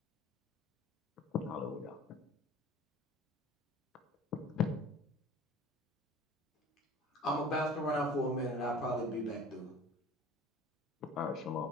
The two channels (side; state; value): both; normal; correlation 0.44